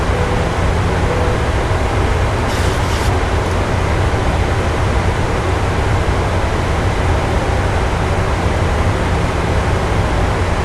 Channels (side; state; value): both; identical; correlation 1.00